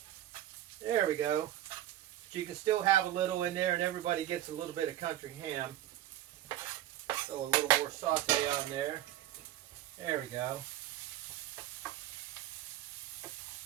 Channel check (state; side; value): quieter; left; 13.2 dB